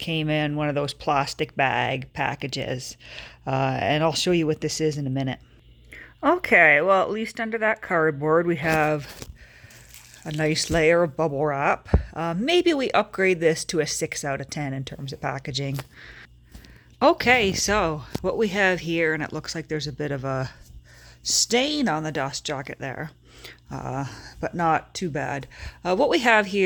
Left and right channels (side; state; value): both; identical; correlation 1.00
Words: in one of those plastic bag packages, and I'll show you what this is in a minute. Okay, well, at least under that cardboard we have a nice layer of bubble wrap. Maybe we upgrade this to a 6 out of 10 in terms of packaging. Okay, so what we have here, and it looks like there's a bit of a stain on the dust jacket there, but not too bad. What we have